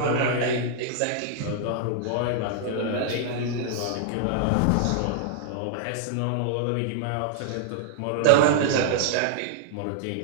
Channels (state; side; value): different; both; correlation -0.01